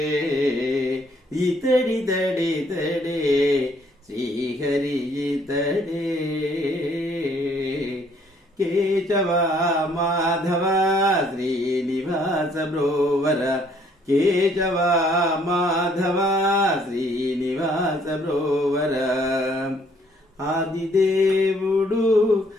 ఇతడితడితడే శ్రీహరి ఇతడే కేశవ మాధవ శ్రీనివాస బ్రోవర కేశవ మాధవ శ్రీనివాస బ్రోవర ఆదిదేవుడు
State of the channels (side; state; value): both; normal; correlation 0.64